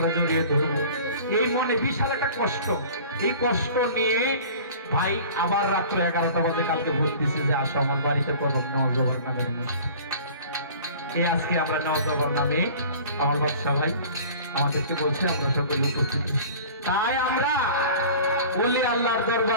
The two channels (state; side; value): inverted; both; correlation -0.43